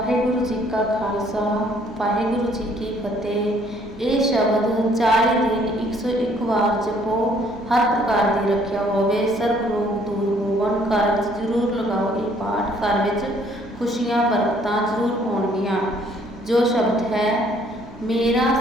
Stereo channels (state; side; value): noise; right; hum, 20 dB below the sound